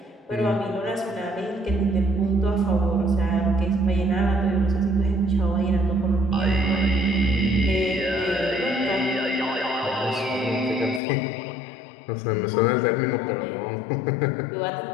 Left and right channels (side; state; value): right; drops out; at 11.0 s